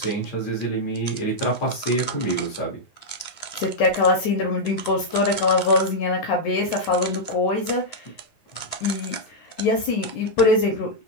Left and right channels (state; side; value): late; right; 9.6 ms